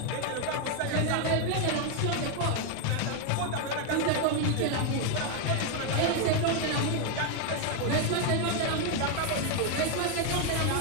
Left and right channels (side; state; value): both; different; correlation 0.01